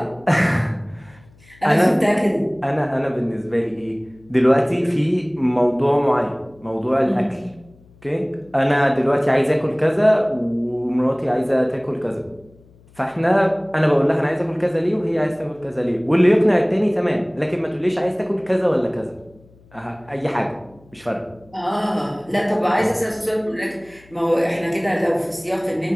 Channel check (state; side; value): noise; left; hum, 27 dB below the sound